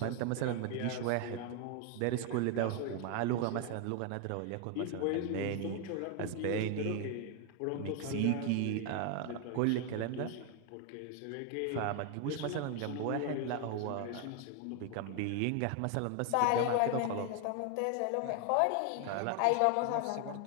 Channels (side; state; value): both; different; correlation 0.01